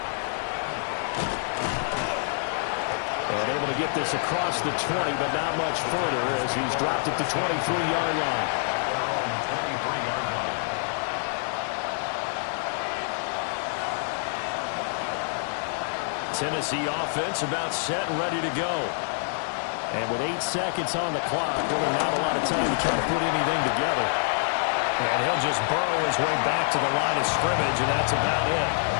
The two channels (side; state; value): right; silent; digital silence